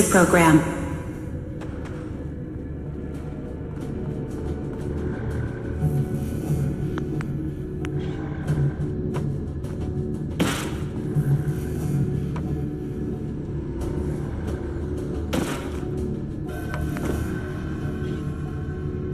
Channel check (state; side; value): identical; both; correlation 1.00